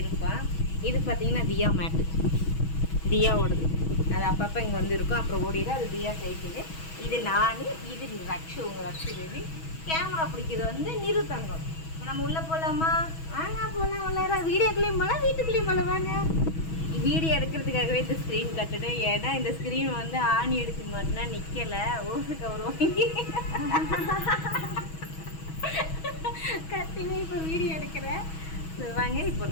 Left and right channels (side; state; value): right; late; 6.2 ms